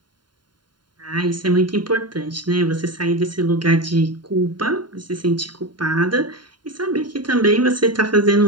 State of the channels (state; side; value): late; left; 0.71 ms